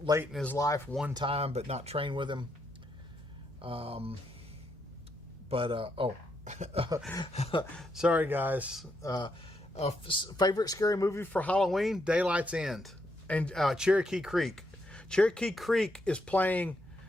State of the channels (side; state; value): both; normal; correlation 0.78